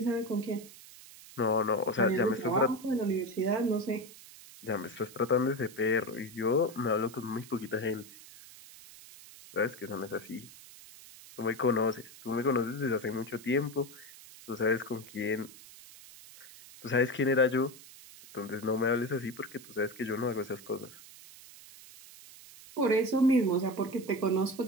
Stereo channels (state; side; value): noise; right; hiss, 19 dB below the sound